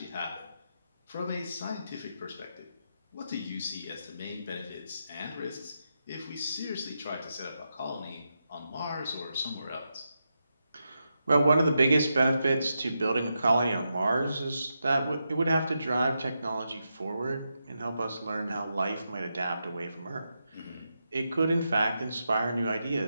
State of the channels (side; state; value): both; inverted; correlation -0.86